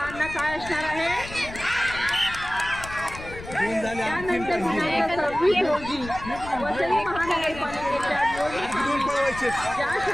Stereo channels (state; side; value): noise; left; rumble, 13 dB below the sound